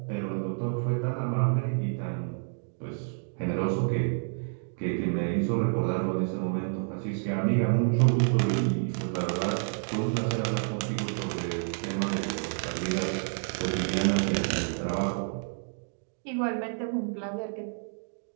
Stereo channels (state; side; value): silent; left; digital silence